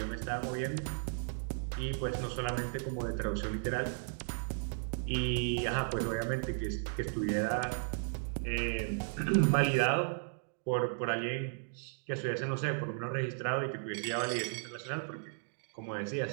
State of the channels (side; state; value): left; silent; digital silence